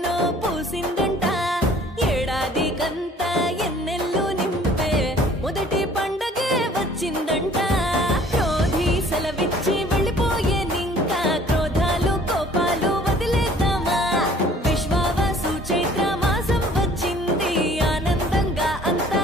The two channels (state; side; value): normal; both; correlation 0.54